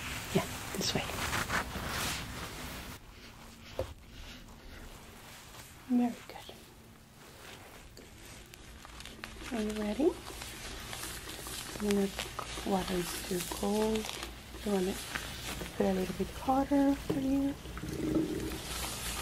Yeah, this way. Very good. Are you ready? Water is too cold. You want it to put a little bit hotter for you.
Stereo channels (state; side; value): identical; both; correlation 1.00